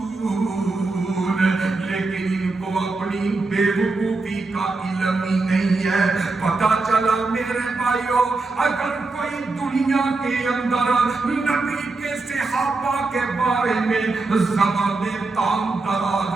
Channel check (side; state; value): left; quieter; 3.6 dB